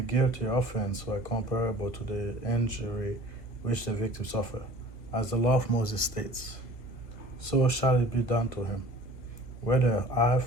guilty offense were comparable to the injury which the victim suffered. As the law of Moses states, so shall it be done to him, whether eye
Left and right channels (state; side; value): late; right; 1.3 ms